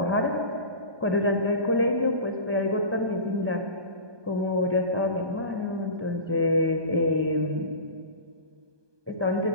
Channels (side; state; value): left; late; 1.2 ms